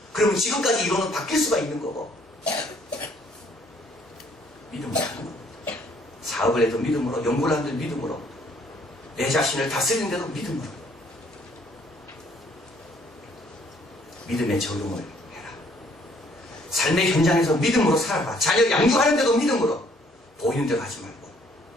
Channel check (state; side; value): normal; both; correlation 0.63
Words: 그러면 지금까지 이론은 바뀔 수가 있는 거고. 믿음으로 하는 겁니다. 사업을 해도 믿음으로, 연구를 하는데도 믿음으로, 내 자신을 다스리는데도 믿음으로. 믿음의 적용을 해라. 삶의 현장에서 믿음으로 살아봐. 자녀 양육하는데도 믿음으로. 보이는 대로 하지 말고.